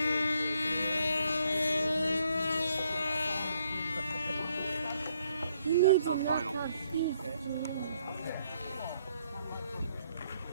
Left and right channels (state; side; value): inverted; both; correlation -0.70